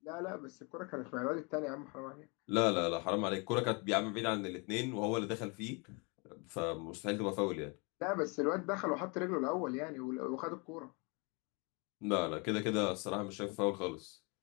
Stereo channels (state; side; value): quieter; right; 31.1 dB